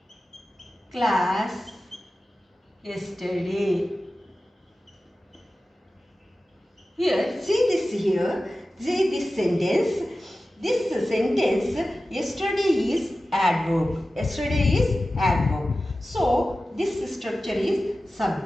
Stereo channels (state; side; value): normal; both; correlation 0.95